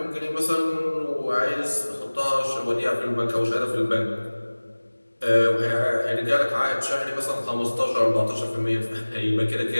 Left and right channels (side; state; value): both; inverted; correlation -1.00